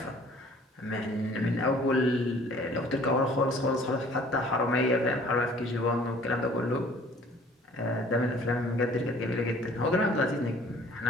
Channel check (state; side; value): normal; both; correlation 0.53